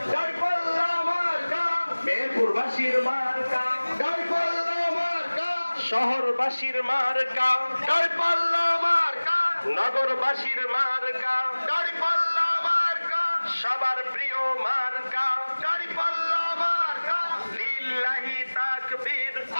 মেহেরপুরবাসীর মার্কা শহরবাসীর মার্কা দাড়িপাল্লা মার্কা, নগরবাসীর মার্কা দাড়িপাল্লা মার্কা, সবার প্রিয় মার্কা দাড়িপাল্লা মার্কা। লিল্লাহি তাকবীর।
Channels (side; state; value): both; inverted; correlation -1.00